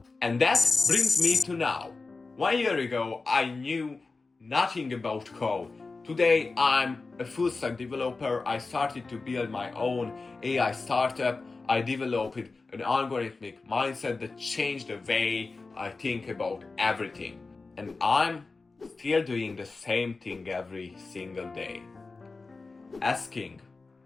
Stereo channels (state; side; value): quieter; right; 3.9 dB